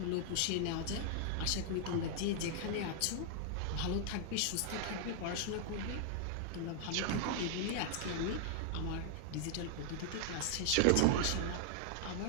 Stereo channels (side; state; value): both; different; correlation 0.00